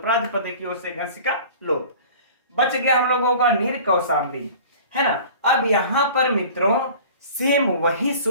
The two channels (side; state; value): both; inverted; correlation -0.43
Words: की ओर से घस का लोप। बच गया हम लोगों का निर कौशाम्बी, है ना। अब यहां पर मित्रों सेम वही